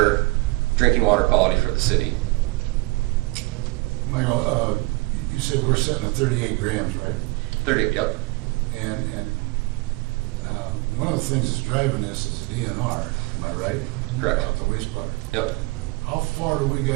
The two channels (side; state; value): left; quieter; 24.5 dB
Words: drinking water quality for the city. Michael, you said we're setting at 38 grams, right? 30, yep. And one of the things that's driving this is DNR, am I right? Correct. About the wastewater. Yep. How far do we